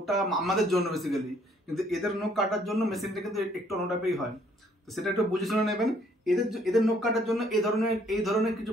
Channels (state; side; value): normal; both; correlation 0.64